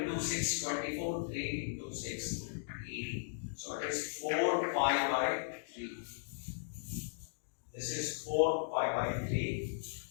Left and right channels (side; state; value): right; silent; digital silence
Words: 6, 24, 3 into 6, 80. So it is 4 pi by 3. This is 4 pi by 3